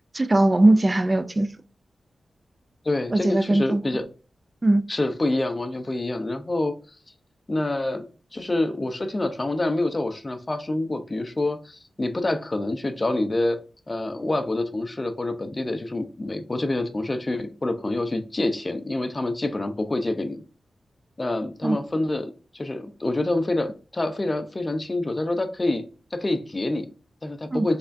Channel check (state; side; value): normal; both; correlation 0.96